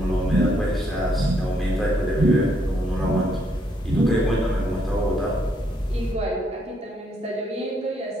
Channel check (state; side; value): normal; both; correlation 0.72